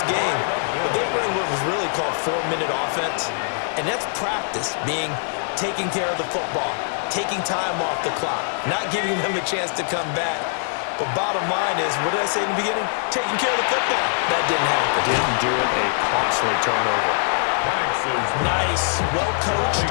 game. But they ran what was really called 4-minute offense. And that's practice, being taking care of the football, taking time off the clock, not giving them a chance to come back. But bottom line is, what did I say in the beginning? Taking care of the football. That didn't happen. Didn't do it. A costly turnover. Nice. Well coached.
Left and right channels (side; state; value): right; silent; 64 dB below the other